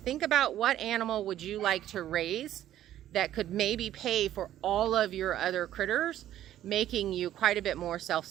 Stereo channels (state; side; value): quieter; left; 12.3 dB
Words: about what animal would you like to raise that could maybe pay for all of your other critters, making you quite a bit more